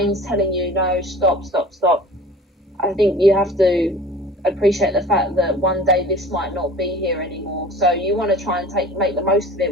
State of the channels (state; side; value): normal; both; correlation 0.43